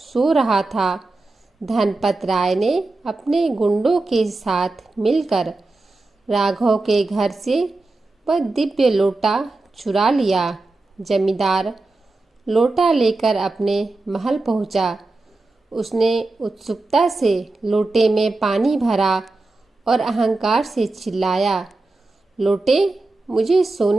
रहा था, धनपत राय ने अपने गुंडों के साथ मिलकर राघव के घर से वह दिव्य लोटा चुरा लिया। जमींदार लोटा लेकर अपने महल पहुंचा। उसने उत्सुकता से लोटे में पानी भरा और अहंकार से चिल्लाया, लोटे, मुझे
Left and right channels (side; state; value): left; quieter; 3.2 dB